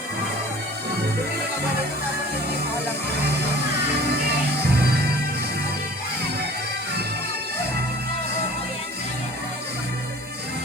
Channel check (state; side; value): normal; both; correlation 0.46